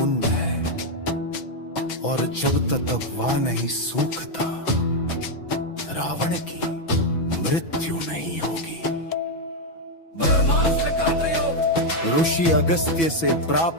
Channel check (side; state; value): right; late; 6.1 ms